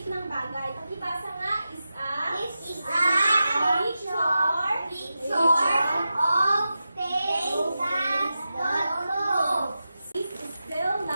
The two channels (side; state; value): both; inverted; correlation -0.91